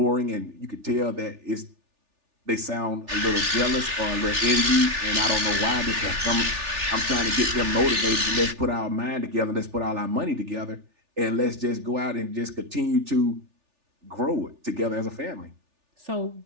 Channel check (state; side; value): late; left; 3.4 ms